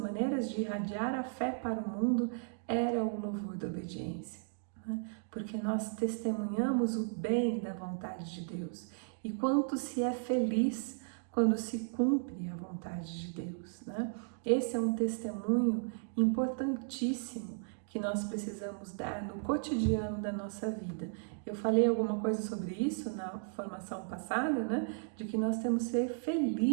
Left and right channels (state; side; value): silent; left; digital silence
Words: de irradiar a fé para o mundo era o louvor da obediência, né? Porque nós testemunhamos o bem da vontade de Deus e quanto se é feliz quando se cumpre a vontade de Deus, né? Esse é um testemunho importantíssimo que nós precisamos dar no cotidiano da nossa vida. Eu falei alguma coisa sobre isso na formação passada, né? De que nós temos que ser